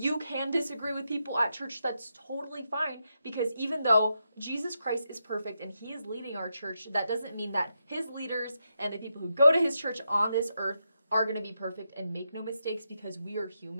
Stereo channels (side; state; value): both; inverted; correlation -0.84